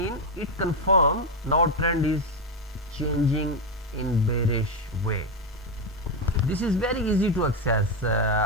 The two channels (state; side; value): normal; both; correlation 0.08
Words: it confirm now trend is changing in bearish way. This is very easy to access.